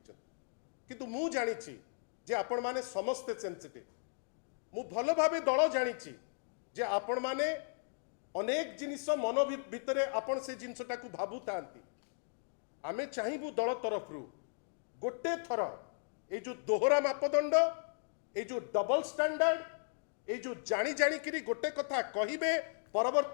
किंतु मु जानी जे आपण माने समस्ते सेंसिटिव मु भल भावे दल जानी जे आपण माने अनेक जिनिस मन भितर आपण से जिनसटा को भाबु थांती आमे चाहिबु दल तरफ गोटे थर ए जो दोहरा मापदंड ए जो डबल स्टैंडर्ड ए जो जानी जानी किरी गोटे कथा कहिबे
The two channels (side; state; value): right; silent; digital silence